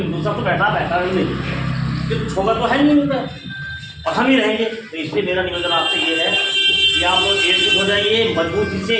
दूसरा तो बैठा नहीं, तो छोगा तो है नहीं उनका, और हम ही रहेंगे। तो इसलिए मेरा निवेदन आपसे ये है कि आप लोग एकजुट हो जाइए, मजबूती से,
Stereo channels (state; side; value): identical; both; correlation 1.00